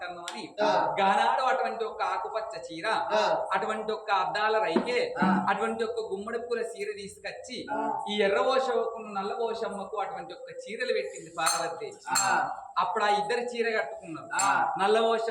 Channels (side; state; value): both; identical; correlation 1.00